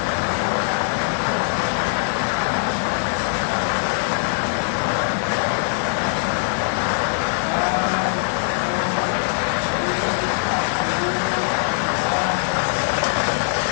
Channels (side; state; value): right; silent; digital silence